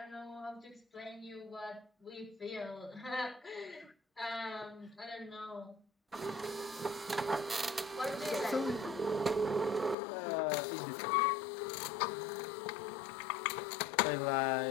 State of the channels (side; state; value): right; drops out; at 10.0 s